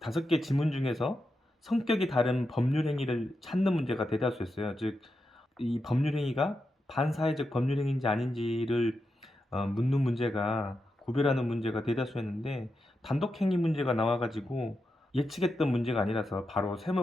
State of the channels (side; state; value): both; normal; correlation 0.87